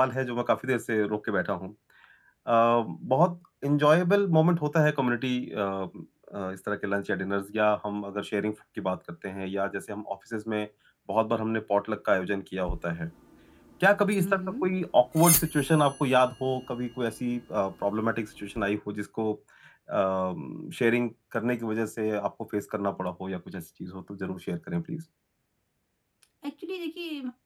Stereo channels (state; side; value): identical; both; correlation 1.00